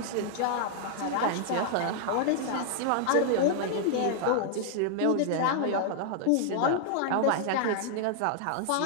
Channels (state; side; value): different; both; correlation -0.01